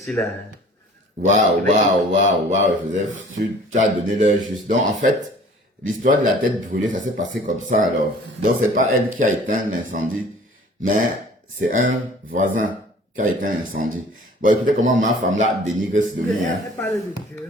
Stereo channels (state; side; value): normal; both; correlation 0.49